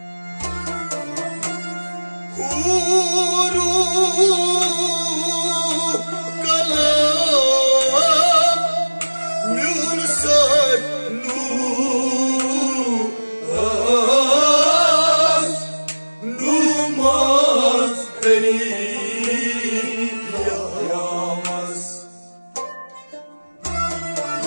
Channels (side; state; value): both; inverted; correlation -1.00